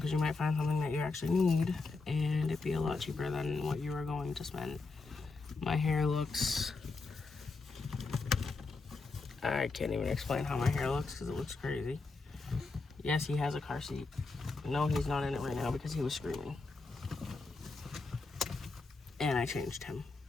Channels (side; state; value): right; quieter; 3.9 dB